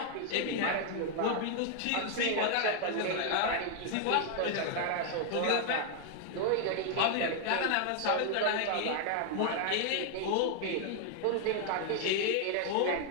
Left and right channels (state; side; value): different; both; correlation 0.00